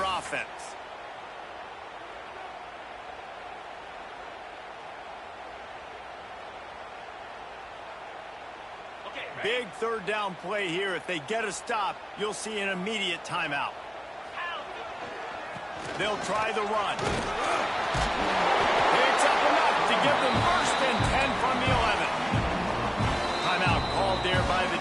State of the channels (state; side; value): identical; both; correlation 1.00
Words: offense. Big third down play here. If they get a stop, you'll see an immediate timeout. They'll try the run. It's up enough to give them 1st and 10 from the 11. Timeout called there by the